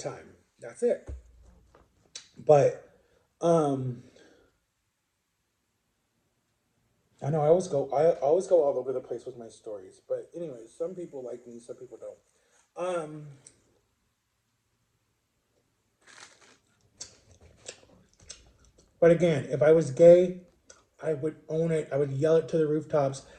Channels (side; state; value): both; identical; correlation 1.00